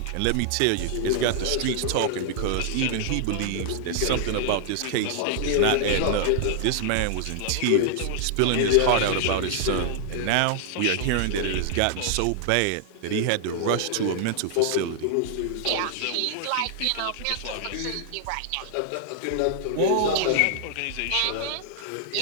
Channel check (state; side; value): different; both; correlation -0.01